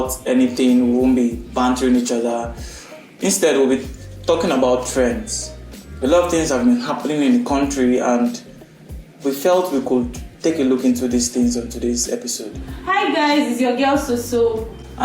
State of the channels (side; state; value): both; identical; correlation 1.00